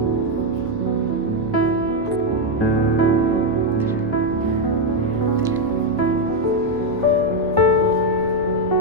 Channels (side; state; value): both; normal; correlation 0.04